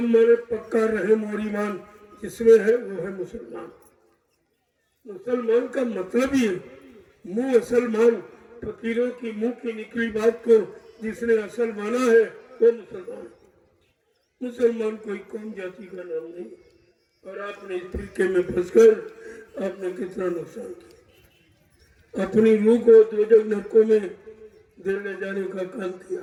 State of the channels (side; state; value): both; identical; correlation 1.00